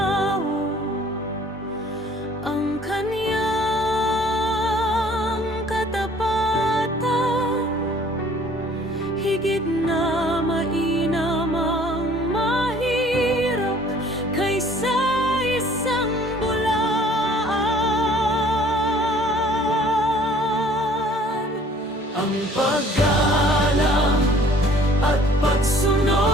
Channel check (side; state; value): both; normal; correlation 0.54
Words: ang kaniyang katapatan, higit na mainam ang mahirap kaysa isang bulaan. Ang paggalang at